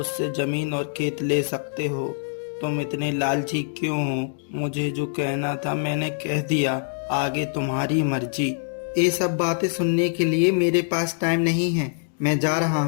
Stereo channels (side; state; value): right; silent; digital silence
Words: जमीन और खेत ले सकते हो। तुम इतने लालची क्यों हो? मुझे जो कहना था मैंने कह दिया, आगे तुम्हारी मर्जी। ये सब बातें सुनने के लिए मेरे पास टाइम नहीं है, मैं जा रहा